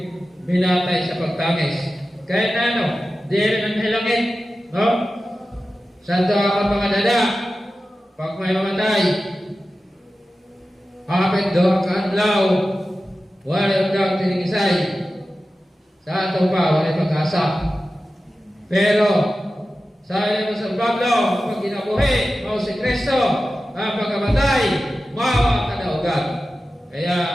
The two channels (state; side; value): normal; both; correlation 0.94